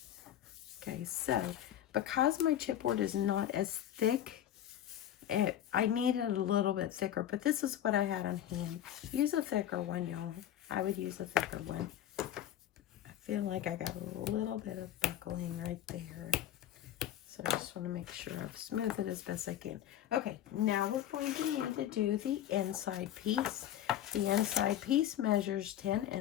Okay, so because my chipboard is not as thick, I need it a little bit thicker, but this is what I had on hand. Use a thicker one, y'all. I would use a thicker one. I feel like I got a little bit of buckling right there. So I just want to make sure I've smoothed it as best I can. Okay, now we're going to need to do the inside piece. The inside piece measures 10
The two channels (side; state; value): right; quieter; 11.3 dB